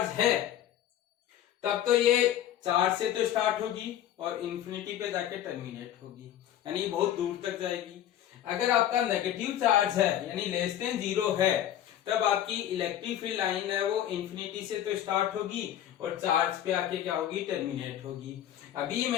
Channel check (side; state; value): right; quieter; 11.4 dB